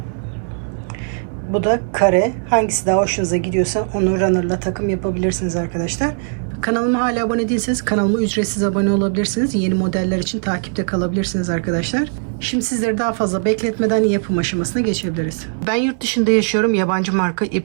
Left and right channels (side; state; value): left; silent; 64 dB below the other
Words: Bu da kare. Hangisi daha hoşunuza gidiyorsa onu runner'la takım yapabilirsiniz arkadaşlar. Kanalıma hala abone değilseniz kanalıma ücretsiz abone olabilirsiniz. Yeni modeller için takipte kalabilirsiniz arkadaşlar. Şimdi sizleri daha fazla bekletmeden yapım aşamasına geçebiliriz. Ben yurt dışında yaşıyorum. Yabancı marka